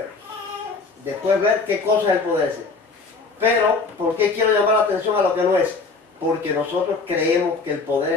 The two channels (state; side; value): quieter; right; 4.2 dB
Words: Después ver qué cosa es el poder ese. Pero, ¿por qué quiero llamar la atención a lo que no es? Porque nosotros creemos que el